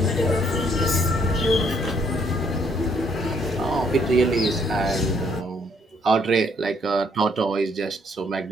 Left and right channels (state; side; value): normal; both; correlation 0.68